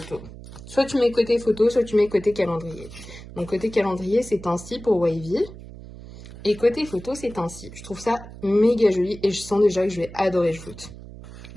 Soit tu mets côté photo, soit tu mets côté calendrier. Donc, côté calendrier, c'est ainsi pour Wavy. Et côté photo, c'est ainsi. Je trouve ça méga joli et je sens déjà que je vais adorer le shoot.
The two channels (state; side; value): noise; right; hum, 15 dB below the sound